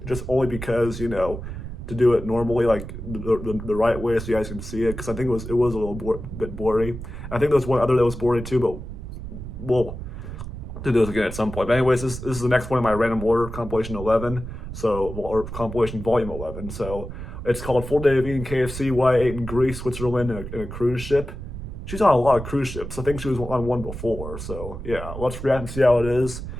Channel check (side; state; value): right; noise; rumble, 9 dB below the sound